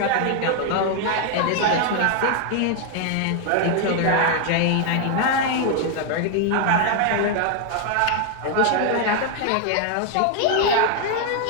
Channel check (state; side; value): different; both; correlation 0.00